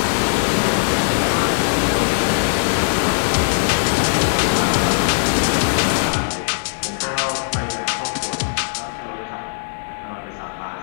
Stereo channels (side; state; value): right; silent; digital silence